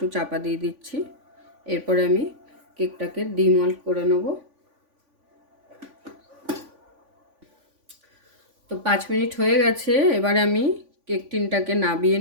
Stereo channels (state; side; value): late; left; 3.5 ms